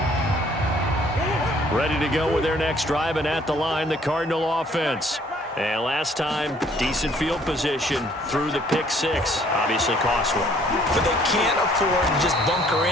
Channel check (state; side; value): normal; both; correlation 0.60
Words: Ready to go with their next drive, and at the line, the Cardinal offense. And last time, decent field position through the pick 6. Obviously cost one. But they can't afford to just bunker